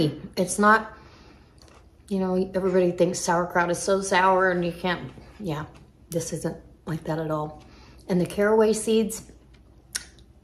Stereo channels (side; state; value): both; identical; correlation 1.00